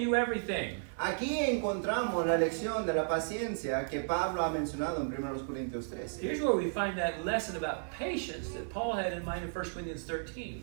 everything. Aquí encontramos la lección de la paciencia que Pablo ha mencionado en 1 Corintios 13. Here's where we find that lesson about patience that Paul had in mind in 1 Corinthians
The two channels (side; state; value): left; silent; digital silence